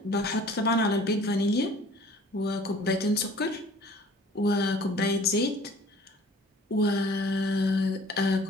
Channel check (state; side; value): normal; both; correlation 0.50